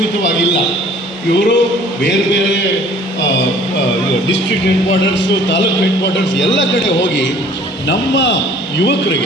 ಇವರು ಬೇರೆ ಬೇರೆ district head quarters, taluk head quarters ಎಲ್ಲ ಕಡೆ ಹೋಗಿ ನಮ್ಮ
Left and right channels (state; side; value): normal; both; correlation 0.52